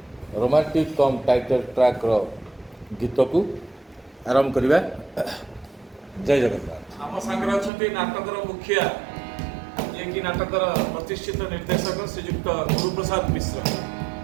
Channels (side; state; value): left; drops out; at 7.7 s